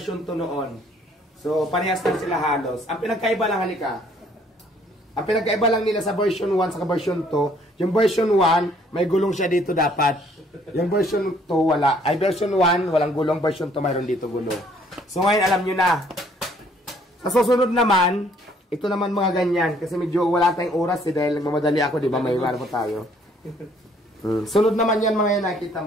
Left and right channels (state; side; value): normal; both; correlation 0.62